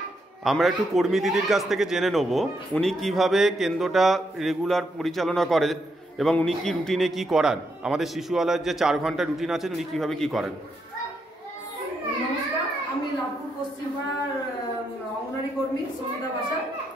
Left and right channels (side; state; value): both; normal; correlation 0.79